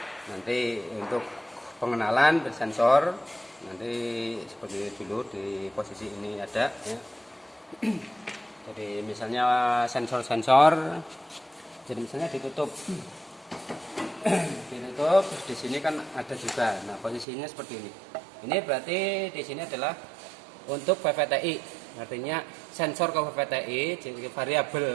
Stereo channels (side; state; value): left; drops out; at 17.2 s